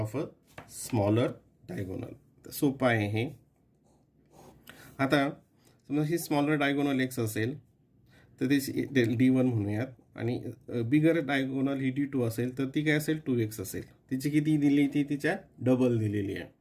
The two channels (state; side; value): identical; both; correlation 1.00